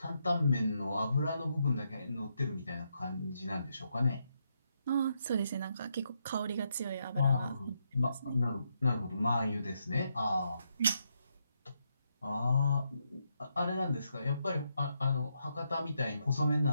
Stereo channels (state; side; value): inverted; both; correlation -0.80